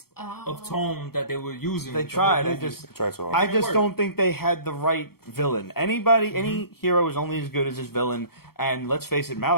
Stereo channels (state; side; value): late; right; 0.94 ms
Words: of tone that they were using. They with the whole tried. I movie. just Tried so hard. I It just worked. don't think they had the right villain. Any hero is only as good as his villain. And let's face it,